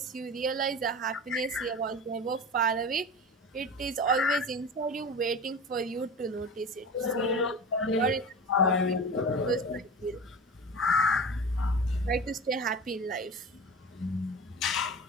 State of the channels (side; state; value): both; normal; correlation 0.31